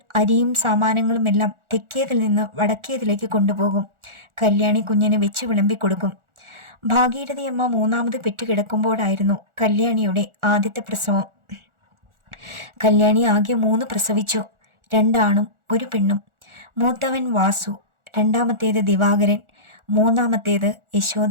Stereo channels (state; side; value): late; left; 1.4 ms